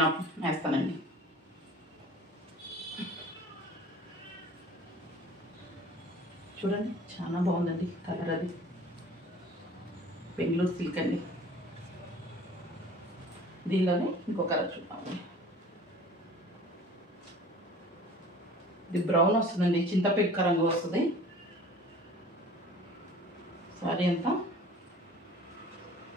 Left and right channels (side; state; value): both; normal; correlation 0.46